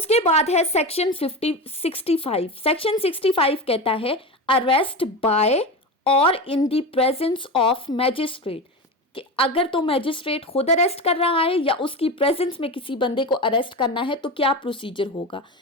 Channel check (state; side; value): normal; both; correlation 0.23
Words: बाद है सेक्शन 65। सेक्शन 65 कहता है अरेस्ट बाय और in the presence of magistrate, कि अगर तो मैजिस्ट्रेट खुद अरेस्ट कर रहा है या उसकी प्रेजेंस में किसी बंदे को अरेस्ट करना है तो क्या प्रोसीजर होगा।